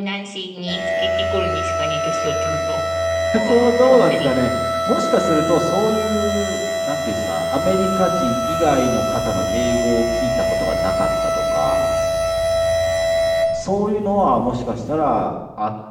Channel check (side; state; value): both; identical; correlation 1.00